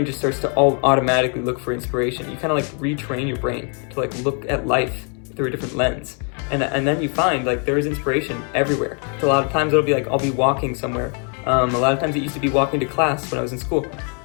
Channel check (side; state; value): right; quieter; 39.8 dB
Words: just starts to automatically look for inspiration. You kind of like retrain your brain to like look at life through a different lens. And then you find like there is inspiration everywhere. So a lot of times it'll be like, I'll be walking somewhere. A lot of times it used to be walking to class when I was in school.